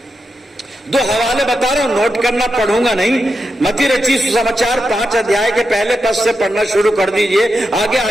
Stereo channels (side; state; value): both; normal; correlation 0.87